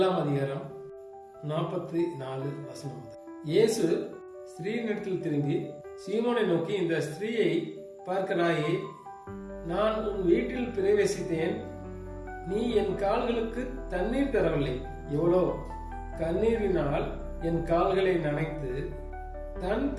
அதிகாரம் 44 வசனம். இயேசு ஸ்திரீனிடத்தில் திரும்பி சீமோனை நோக்கி, இந்த ஸ்திரீயை பார்க்கிறாயே, நான் உன் வீட்டில் பிரவேசித்தேன், நீ என் கால்களுக்கு தண்ணீர் தரவில்லை. எவ்வளோ கண்ணீரினால் என் கால்களை நனைத்து தன்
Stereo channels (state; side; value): identical; both; correlation 1.00